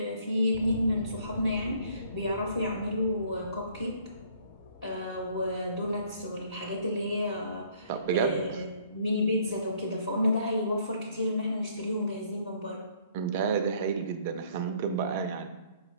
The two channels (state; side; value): inverted; both; correlation -0.61